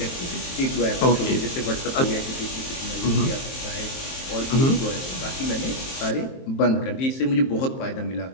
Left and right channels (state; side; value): late; right; 23 ms